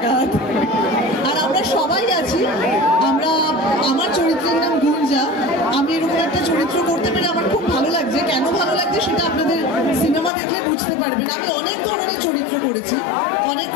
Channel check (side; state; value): right; drops out; at 10.3 s